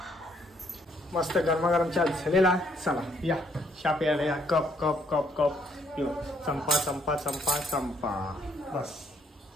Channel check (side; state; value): both; normal; correlation 0.68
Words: मस्त गरमागरम चहा झालेला. चला या चहा प्यायला या. Cup cup cup cup. यो चंपा चंपा चंपा चंपा. बस